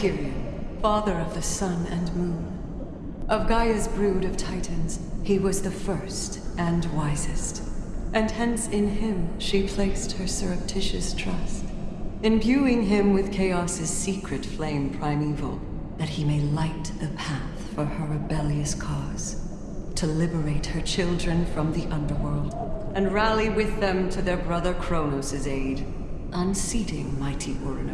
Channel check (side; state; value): both; identical; correlation 1.00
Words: father of the sun and moon. Of Gaia's brood of titans, he was the first and wisest, and hence in him she placed her surreptitious trust, imbuing him with Chaos's secret flame primeval, that he may light the path for her rebellious cause, to liberate her children from the underworld, and rally with them to their brother Cronos' aid, unseating mighty